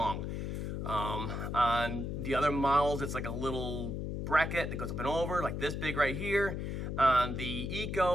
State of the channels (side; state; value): left; noise; hum, 3 dB below the sound